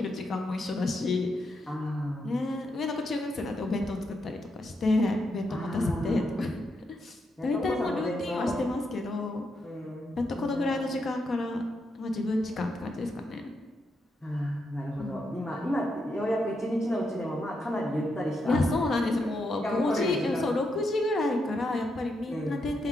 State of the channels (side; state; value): both; normal; correlation 0.82